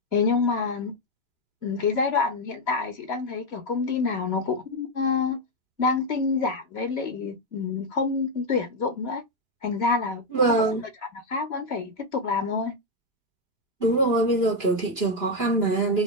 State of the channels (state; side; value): late; left; 2.9 ms